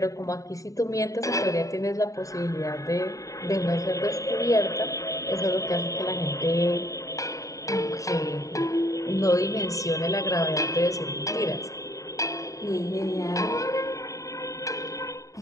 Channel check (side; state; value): right; late; 0.16 ms